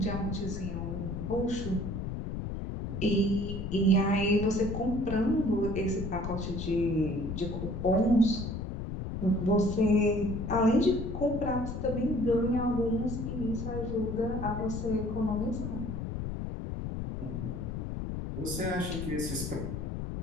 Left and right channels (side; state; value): left; noise; rumble, 5 dB below the sound